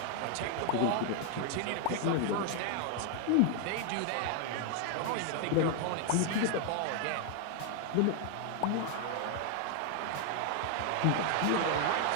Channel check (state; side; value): different; both; correlation 0.00